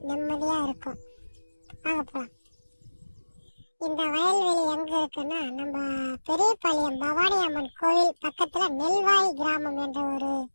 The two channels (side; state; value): both; inverted; correlation -1.00